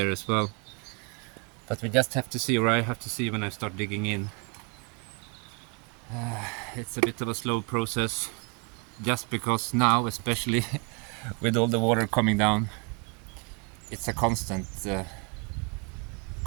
as well. But we just have to see, or I have to see when I start digging in. It's a bit of a slow process, just because now, especially with all the water coming down, it's a constant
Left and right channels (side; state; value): left; quieter; 34.9 dB